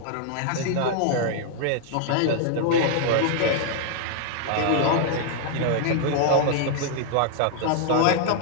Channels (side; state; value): both; different; correlation 0.00